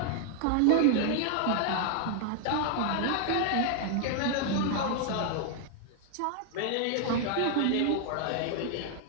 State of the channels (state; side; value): different; both; correlation 0.00